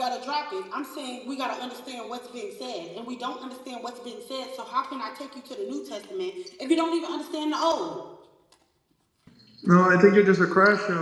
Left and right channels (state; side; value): identical; both; correlation 1.00